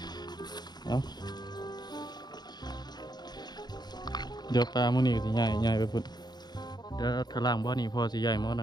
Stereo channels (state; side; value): late; right; 0.20 ms